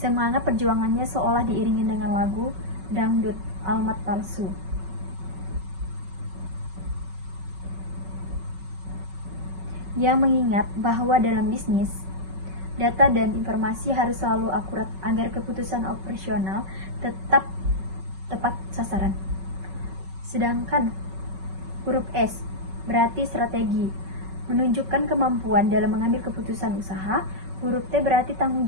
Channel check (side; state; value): left; late; 5.3 ms